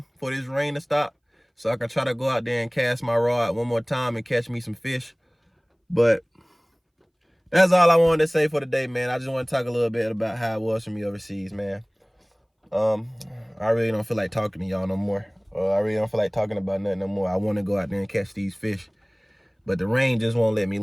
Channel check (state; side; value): identical; both; correlation 1.00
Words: for this rain to stop so I can try to go out there and cast my rod one more time and catch me some fish. But that's all I wanted to say for today, man. I just want to talk a little bit about how it was for me overseas, man. I really don't feel like talking to y'all no more. I really don't feel like talking about nothing no more. I want to go out there and catch these fish, but the rain just won't let me